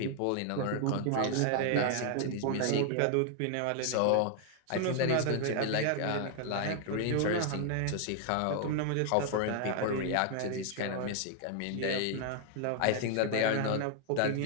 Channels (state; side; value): different; both; correlation 0.00